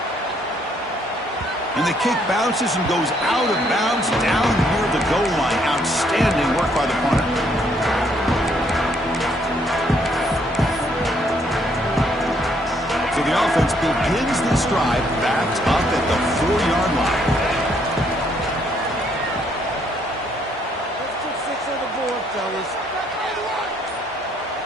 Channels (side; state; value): both; normal; correlation 0.69